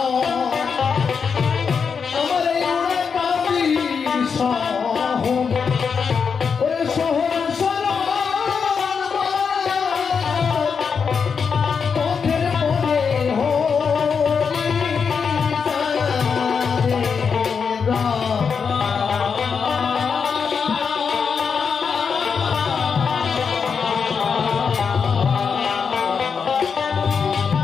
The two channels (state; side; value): quieter; right; 6.0 dB